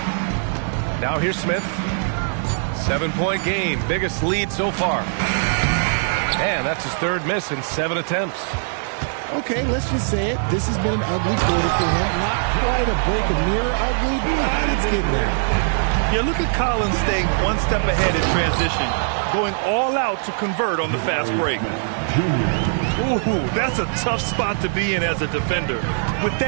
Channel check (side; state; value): left; silent; 65 dB below the other